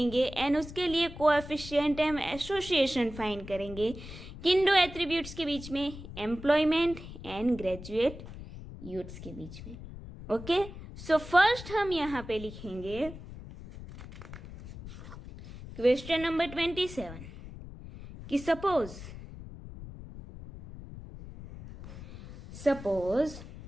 and उसके लिए coefficient हम association find करेंगे किन 2 attributes के बीच में? एम्प्लॉयमेंट एंड ग्रेजुएट यूथ्स के बीच में। ओके, सो फर्स्ट हम यहाँ पे लिखेंगे क्वेश्चन नंबर 27 कि suppose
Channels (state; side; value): noise; left; rumble, 13 dB below the sound